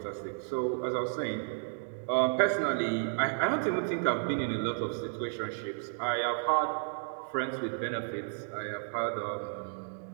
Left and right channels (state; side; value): silent; left; digital silence